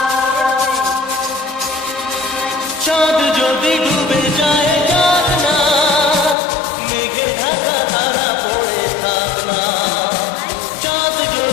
চাঁদ যদি ডুবে যায় যাক না, মেঘে ঢাকা তারা পড়ে থাক না। চাঁদ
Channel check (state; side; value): drops out; right; at 6.4 s